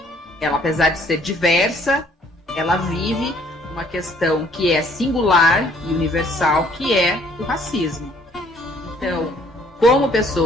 ela, apesar de ser diversa, ela vive uma questão que é singular e universal, que é o racismo. Então, como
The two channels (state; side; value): normal; both; correlation 0.61